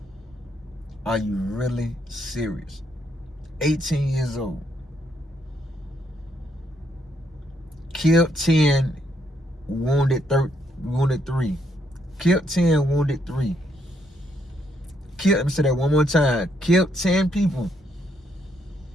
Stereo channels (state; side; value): normal; both; correlation 0.74